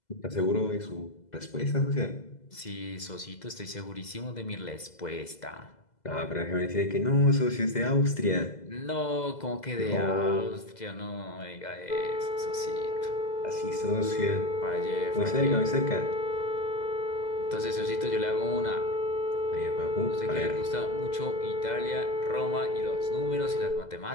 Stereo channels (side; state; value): right; late; 2.0 ms